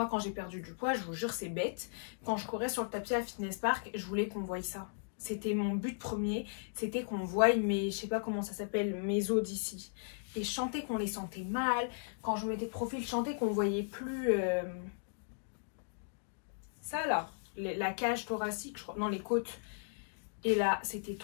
quand j'ai perdu du poids, je vous jure, c'est bête. Quand je courais sur le tapis à Fitness Park, je voulais qu'on voie ça. C'était mon but premier. C'était qu'on voie mes, je sais pas comment ça s'appelle, mes os d'ici. Et je sentais qu'on les sentait mal. Quand je mettais de profil, je sentais qu'on voyait plus... ça là, la cage thoracique, je crois. Non, les côtes. Et là, c'était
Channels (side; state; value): right; silent; digital silence